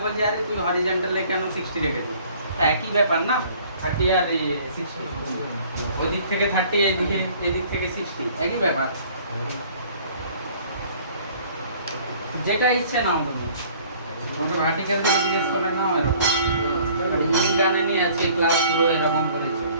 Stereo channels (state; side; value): inverted; both; correlation -0.54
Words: বলছে আরে তুই হরিজন্টালে কেন 60 রেখেছো? তা একই ব্যাপার না, 30 আর 60, ওদিক থেকে 30 এদিক থেকে 60 একই ব্যাপার। যেটা ইচ্ছে নাও তুমি, ওটা ভার্টিক্যাল থেকে জিজ্ঞেস করলে না এরকম। আর ইনগানে নিয়ে আছে ক্লাস পুরো এরকম করেছে